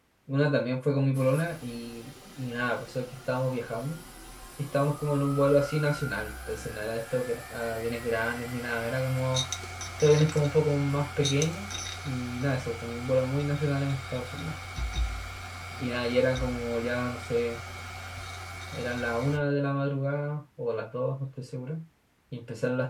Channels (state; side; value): identical; both; correlation 1.00